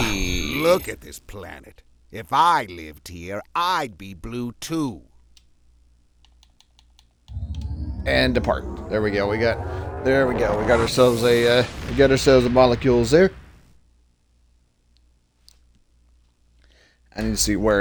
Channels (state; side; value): identical; both; correlation 1.00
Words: look at this planet. If I lived here, I'd be blue too. And depart. There we go. We got ourselves a molecules there. I need to see